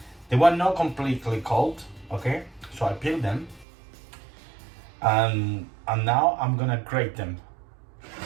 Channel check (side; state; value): left; drops out; at 3.7 s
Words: They were not completely cold, okay? So I peeled them, and now I'm gonna grate them